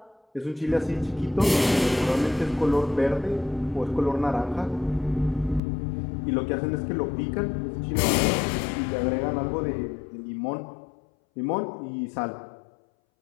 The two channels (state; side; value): drops out; right; at 5.6 s